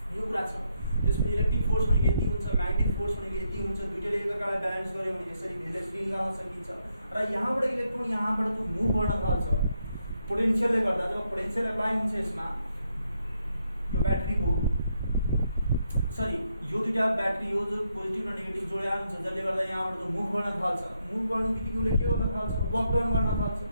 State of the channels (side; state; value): both; inverted; correlation -0.78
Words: यो कुरा छ। त्यसपछि इलेक्ट्रिक फोर्स भनेको यति हुन्छ, म्याग्नेटिक फोर्स भनेको यति हुन्छ। दुईटैले एकअर्कालाई ब्यालेन्स गर्यो भने यसरी भेलोसिटी निकाल्न सकिन्छ। र यहाँबाट इलेक्ट्रोन यहाँबाट त्यो मुभ गर्न थाल्छ पोटेन्सियलले गर्दा। जब पोटेन्सियल एप्लाई हुन्छ यसमा, यो ब्याट्रीको यो दुईटा ब्याट्री हो जो पोजिटिभ र नेगेटिभ जोडिया हुन्छ, जसले गर्दा यहाँबाट त्यो मुभ गर्न थाल्छ। मुभ गर्नु बित्तिकै उसले के गर्न थाल्छ, वर्क डाउन गर्न थाल्छ।